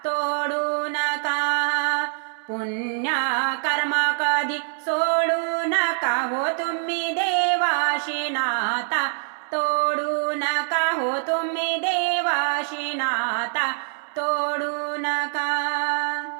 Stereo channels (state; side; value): silent; left; 62 dB below the other